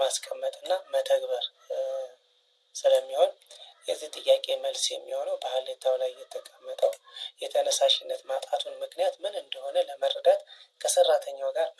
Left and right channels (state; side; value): identical; both; correlation 1.00